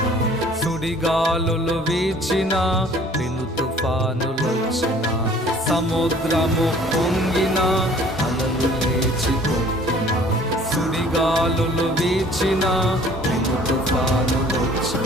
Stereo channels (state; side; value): normal; both; correlation 0.53